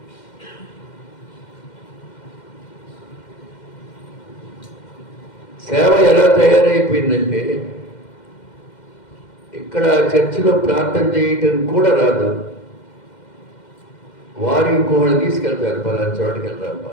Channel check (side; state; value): right; late; 2.1 ms